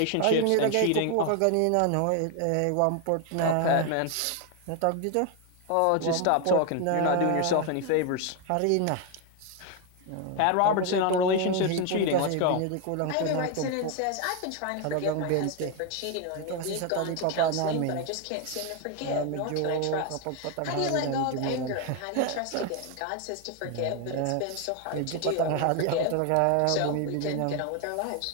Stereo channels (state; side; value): different; both; correlation 0.01